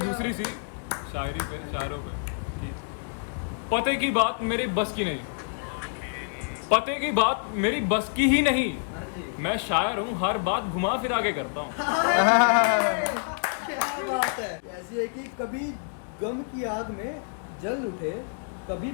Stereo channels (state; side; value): silent; right; digital silence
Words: दूसरी सी शायरी पे, शायरों पे कि पते की बात मेरी बस की नहीं, पते की बात मेरी बस की ही नहीं, मैं शायर हूँ हर बात घुमा फिरा के करता हूँ। क्या बात है। ऐसी है कि कभी गम की आग में जल उठे, कभी